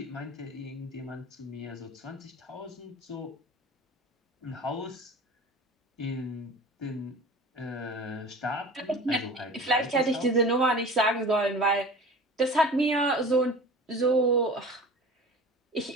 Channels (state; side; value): normal; both; correlation 0.38